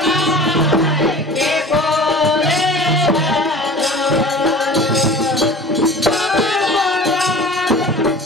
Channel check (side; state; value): both; normal; correlation 0.41